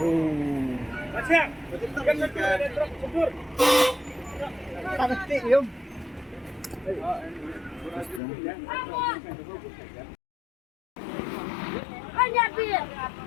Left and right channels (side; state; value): right; drops out; at 8.2 s